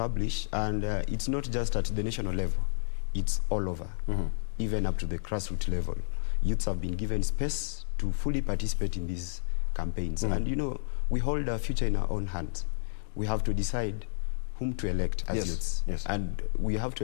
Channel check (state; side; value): silent; right; 57 dB below the other